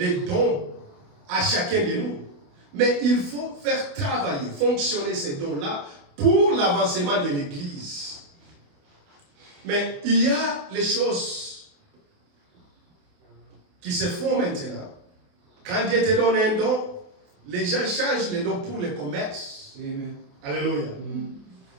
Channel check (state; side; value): late; left; 28 ms